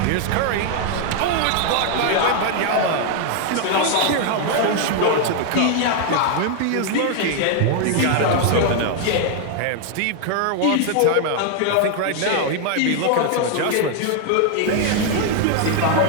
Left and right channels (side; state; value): both; different; correlation 0.00